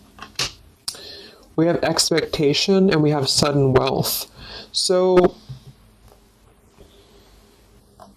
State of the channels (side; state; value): both; identical; correlation 1.00